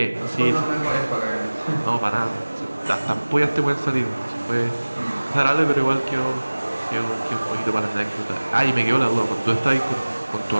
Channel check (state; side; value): inverted; both; correlation -1.00